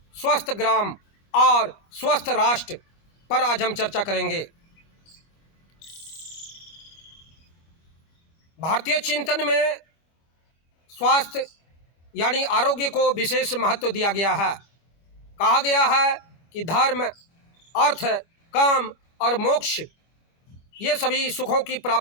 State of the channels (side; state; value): right; late; 24 ms